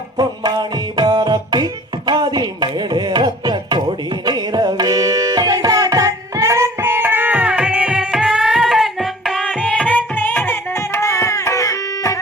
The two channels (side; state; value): both; normal; correlation 0.48